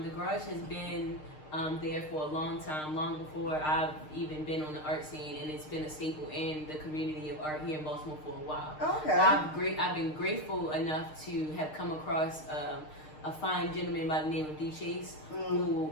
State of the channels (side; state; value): right; late; 6.5 ms